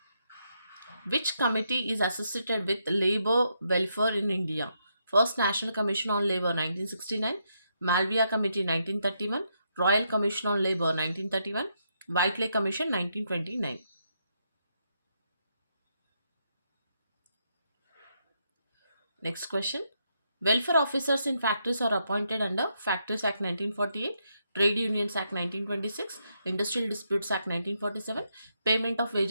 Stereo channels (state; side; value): inverted; both; correlation -0.79